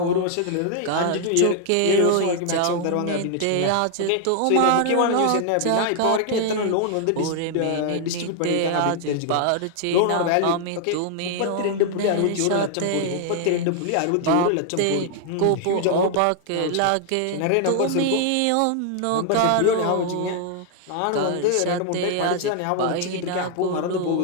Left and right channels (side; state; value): both; different; correlation 0.00